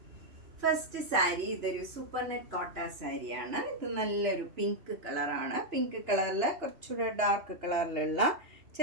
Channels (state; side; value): late; left; 2.9 ms